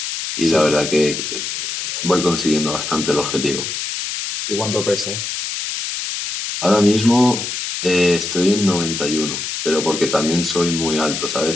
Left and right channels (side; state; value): left; noise; hiss, 4 dB below the sound